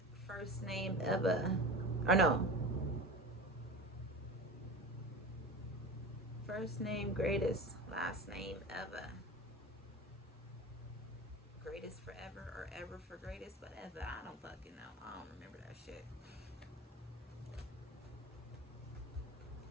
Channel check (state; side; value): normal; both; correlation 0.31